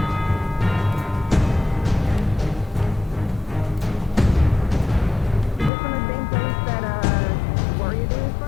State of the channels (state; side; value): drops out; right; at 5.7 s